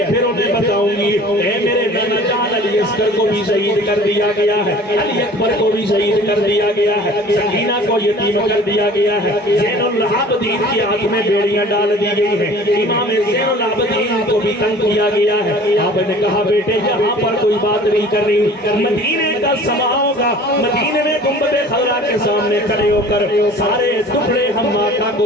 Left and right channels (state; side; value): normal; both; correlation 0.46